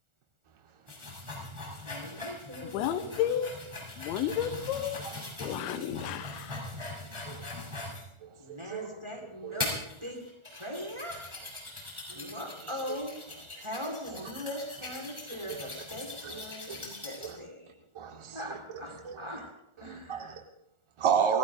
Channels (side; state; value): left; late; 1.4 ms